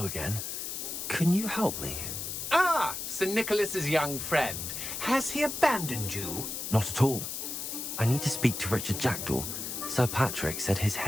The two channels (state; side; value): noise; left; hiss, 5 dB below the sound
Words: again. Can you help me? Ah, Sir Nicholas's young friend. Has he abandoned you? Not at all. I need to speak to Richard Jackdaw. Sir Patrick said his